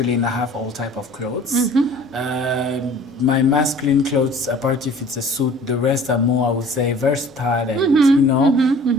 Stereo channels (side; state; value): both; normal; correlation 0.48